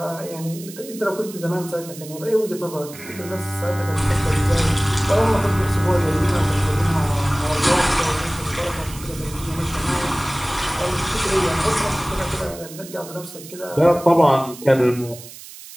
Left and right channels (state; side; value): noise; right; hiss, 16 dB below the sound